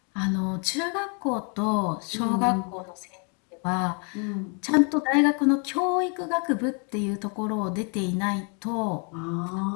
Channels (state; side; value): quieter; right; 37.0 dB